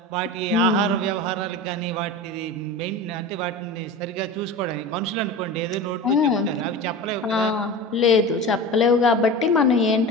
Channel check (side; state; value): both; normal; correlation 0.31